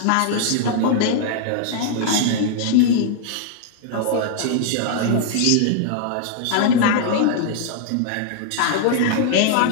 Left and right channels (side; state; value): both; different; correlation -0.01